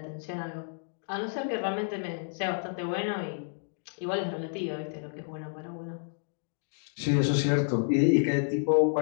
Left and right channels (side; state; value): right; silent; digital silence